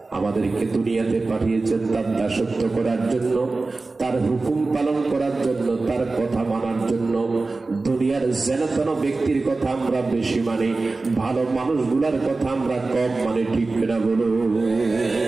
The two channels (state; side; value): quieter; left; 3.6 dB